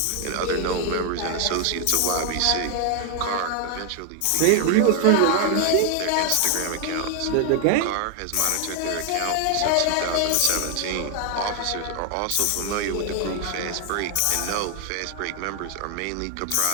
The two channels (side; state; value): both; different; correlation 0.00